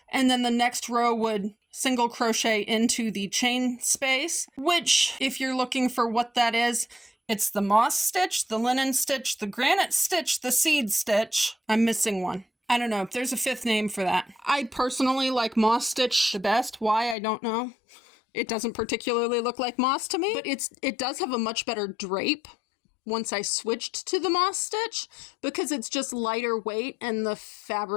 and then the next row would single crochet into the chain space, which, if you're looking for what that is, it's the moss stitch, the linen stitch, the granite stitch, the seed stitch. I'm missing one. I don't know if there's a fifth name for that. I personally like moss stitch the best. Why, I don't know. It doesn't particularly look like moss to me, but it does have a much better drape once I switched to the moss stitch because it's just lighter weight and the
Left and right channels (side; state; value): right; drops out; at 17.2 s